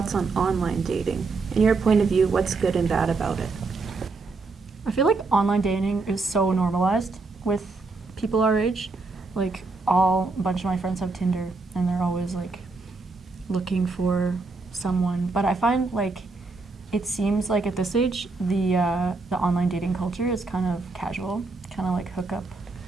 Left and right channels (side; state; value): left; quieter; 3.8 dB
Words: on online dating? In your point of view, what's good and bad about it? I feel like online dating is so normalized with people our age. Like a bunch of my friends have Tinder and they're always like looking for someone. But I find like it seems like at this age the online dating culture is kind of casual, kind of like hookup